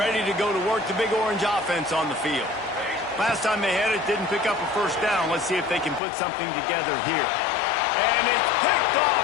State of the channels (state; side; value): drops out; right; at 6.0 s